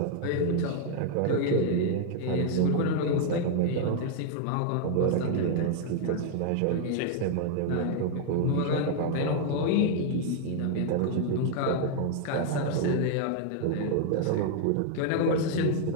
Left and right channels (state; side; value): different; both; correlation 0.00